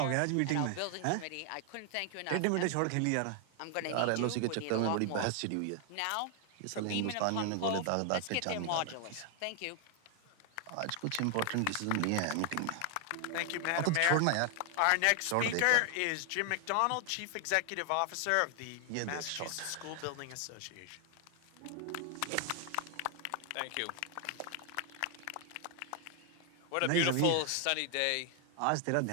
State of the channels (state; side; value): different; both; correlation 0.00